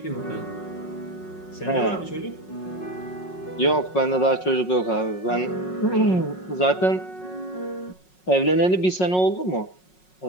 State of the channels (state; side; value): late; right; 5.4 ms